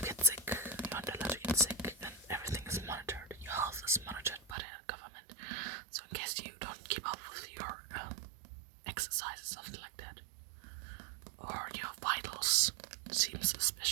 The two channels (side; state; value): left; drops out; at 4.5 s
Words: get sick. And everything is monitored. Your health is monitored by the government. So in case you don't keep up with your exercise, something like that, or your vitals seem